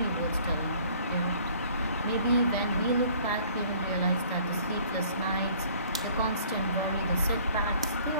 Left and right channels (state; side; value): inverted; both; correlation -0.55